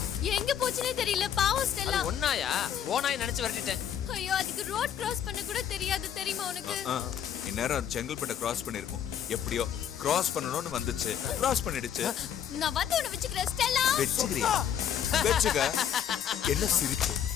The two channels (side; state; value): right; quieter; 9.3 dB